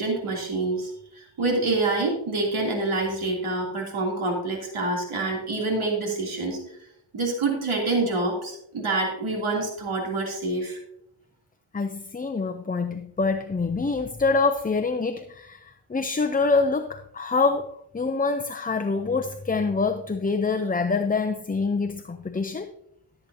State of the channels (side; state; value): both; normal; correlation 0.14